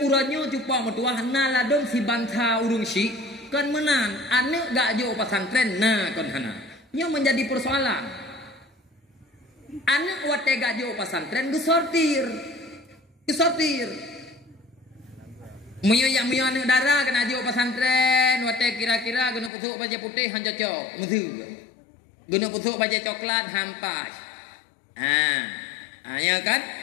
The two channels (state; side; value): drops out; right; at 19.5 s